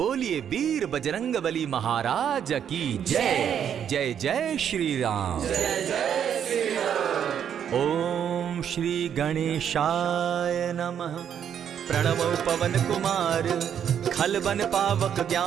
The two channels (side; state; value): left; quieter; 8.8 dB